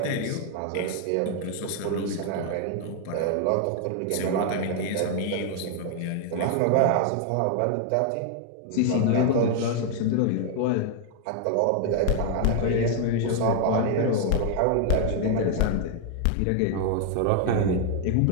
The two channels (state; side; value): different; both; correlation 0.00